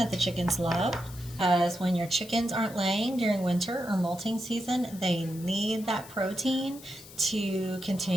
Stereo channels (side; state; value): left; noise; hiss, 18 dB below the sound